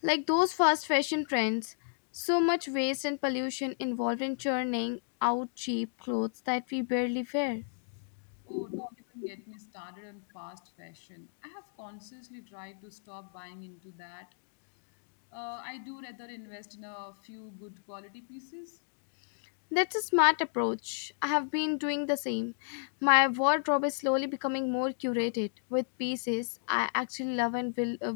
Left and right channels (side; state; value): right; silent; digital silence